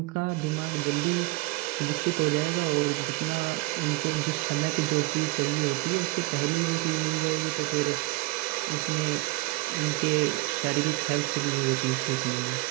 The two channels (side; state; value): left; quieter; 21.6 dB